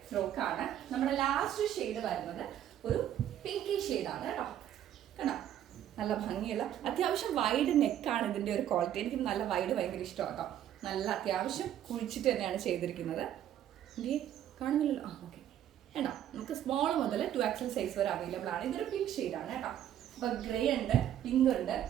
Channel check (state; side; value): quieter; left; 11.0 dB